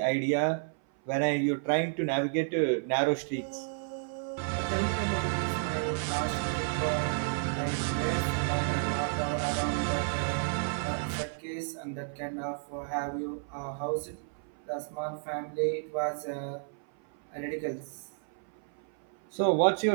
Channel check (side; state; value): left; silent; 57 dB below the other